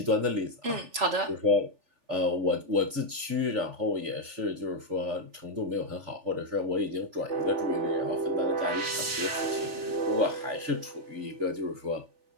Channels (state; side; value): late; left; 3.4 ms